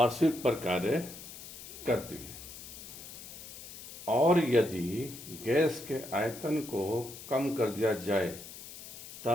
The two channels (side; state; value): left; noise; hiss, 13 dB below the sound